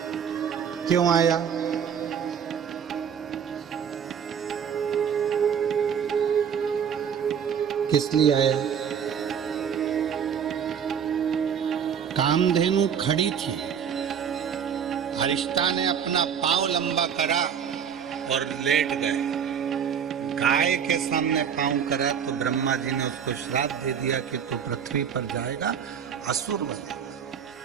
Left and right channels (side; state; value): left; quieter; 7.7 dB